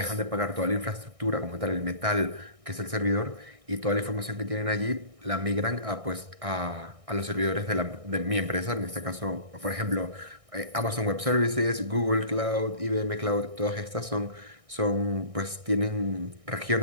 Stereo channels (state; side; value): late; left; 1.6 ms